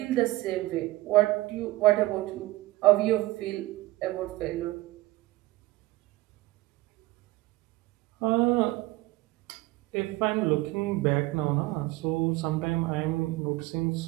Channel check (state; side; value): quieter; left; 19.1 dB